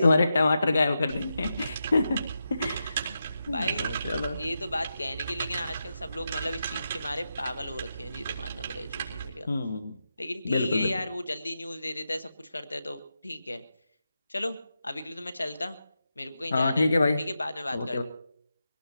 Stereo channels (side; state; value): both; inverted; correlation -0.88